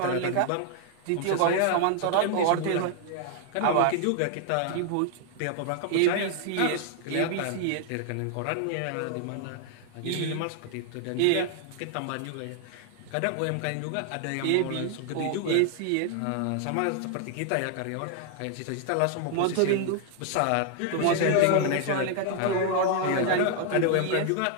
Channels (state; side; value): different; both; correlation 0.00